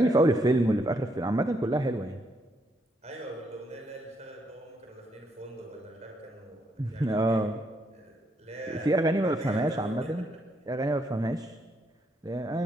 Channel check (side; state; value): both; normal; correlation 0.75